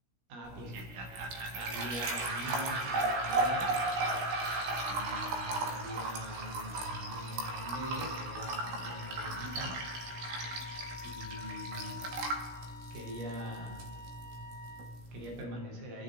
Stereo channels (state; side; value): late; left; 16 ms